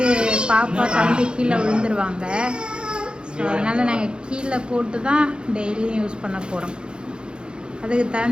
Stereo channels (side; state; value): left; late; 0.051 ms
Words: பாப்பா தம்பி கீழே விழுந்துருவாங்க. ஸோ அதனால் நாங்கள் கீழே போட்டு தான் டெய்லியும் யூஸ் பண்ண போகிறோம். அதுக்கு